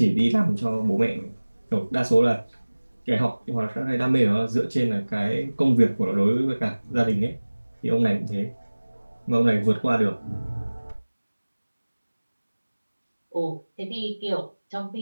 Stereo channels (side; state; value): both; inverted; correlation -1.00